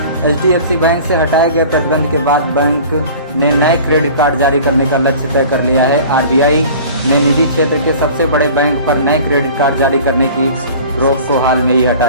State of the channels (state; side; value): inverted; both; correlation -0.44